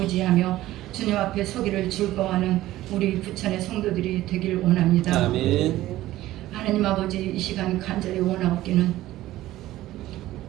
주님 앞에 서기를 즐거워하는 우리 부천의 성도들이 되길 원합니다. 아멘. 하나님 아버지, 이 시간 간절히 원하옵기는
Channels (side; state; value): left; quieter; 15.5 dB